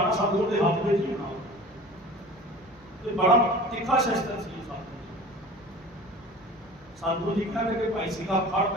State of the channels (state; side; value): normal; both; correlation 0.40